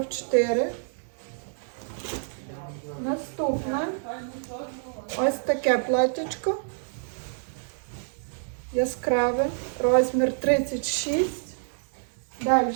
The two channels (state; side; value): silent; left; digital silence